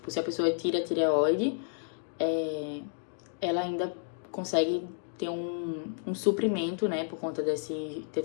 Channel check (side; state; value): right; silent; digital silence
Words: se a pessoa tira a tireoide, ela ainda consegue ter um suprimento, né, por conta desse